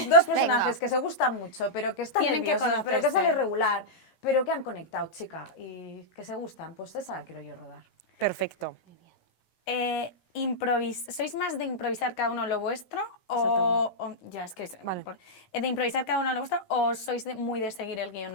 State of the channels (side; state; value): right; late; 17 ms